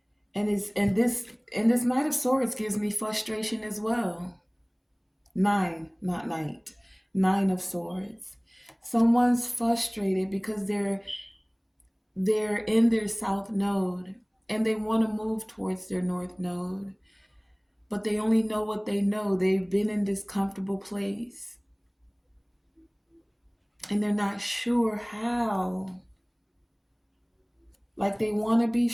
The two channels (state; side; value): identical; both; correlation 1.00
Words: And this Knight of Swords gives me frustration as well. Nine, not night. Nine of Swords. Someone's frustrated because they're in their south node and they want to move towards their north node, but they only know what they know. They've been in this comfortable place and they're not sure how. Like they want to be